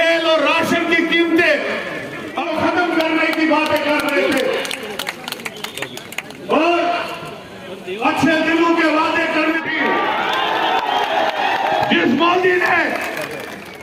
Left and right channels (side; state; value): both; identical; correlation 1.00